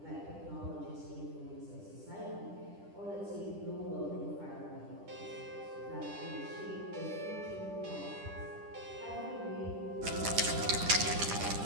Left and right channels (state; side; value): late; left; 10 ms